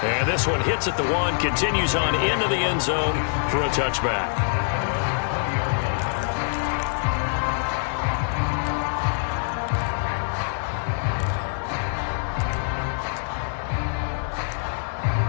And this one hits at the 1, continues on into the end zone for a touchback.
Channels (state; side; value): silent; right; digital silence